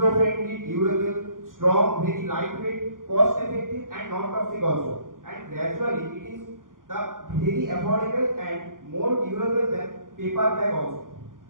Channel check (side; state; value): left; late; 0.90 ms